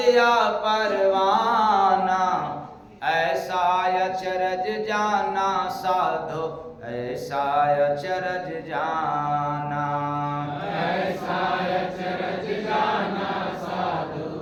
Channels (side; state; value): both; identical; correlation 1.00